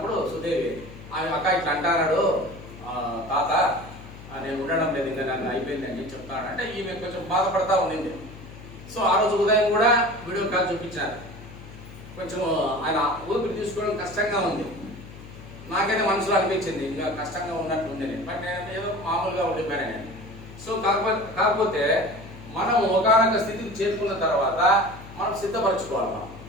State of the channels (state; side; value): noise; left; hum, 16 dB below the sound